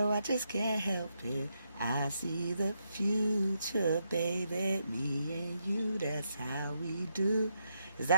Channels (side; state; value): both; inverted; correlation -0.81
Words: I just can't help it. I see the future, baby. Me and you, that's how we do. Is